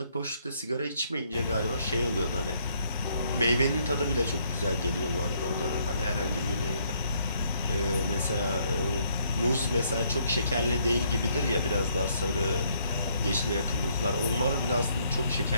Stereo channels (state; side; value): inverted; both; correlation -0.69